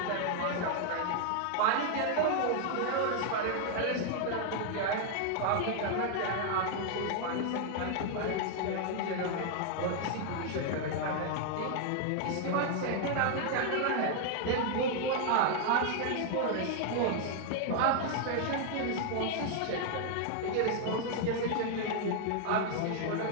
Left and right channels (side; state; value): both; different; correlation 0.00